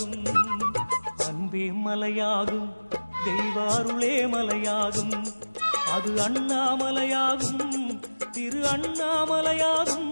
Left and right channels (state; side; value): inverted; both; correlation -1.00